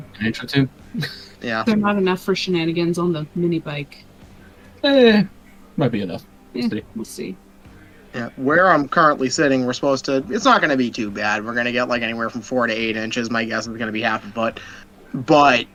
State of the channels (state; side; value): identical; both; correlation 1.00